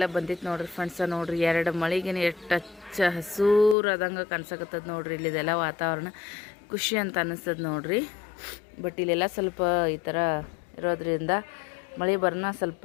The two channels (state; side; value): drops out; right; at 3.8 s